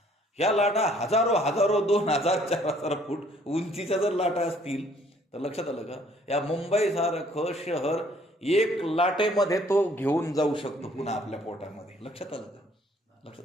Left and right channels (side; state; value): both; normal; correlation 0.61